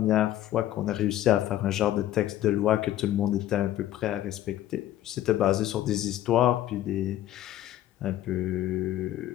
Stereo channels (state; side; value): quieter; right; 13.1 dB